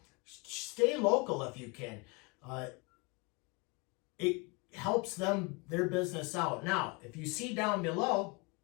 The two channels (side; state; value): right; quieter; 29.2 dB